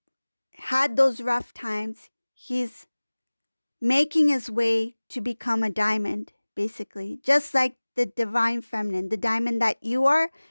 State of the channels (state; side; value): inverted; both; correlation -1.00